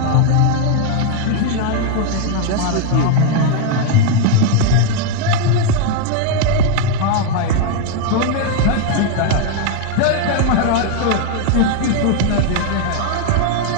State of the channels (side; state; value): both; different; correlation 0.00